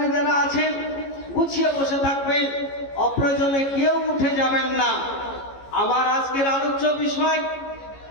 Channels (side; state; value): right; late; 15 ms